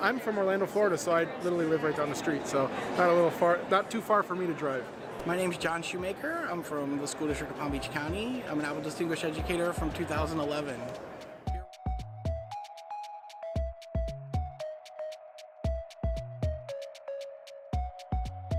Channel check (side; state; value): both; identical; correlation 1.00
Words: from Orlando, Florida, so I literally live right down the street. So not too far for me to drive. My name is John Shoemaker. I'm from the School District of Palm Beach County. I'm an Apple Distinguished Educator from 2011.